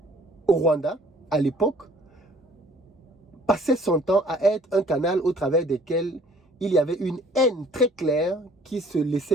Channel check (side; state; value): both; normal; correlation 0.56